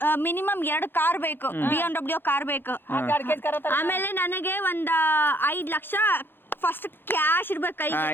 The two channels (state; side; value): late; right; 0.10 ms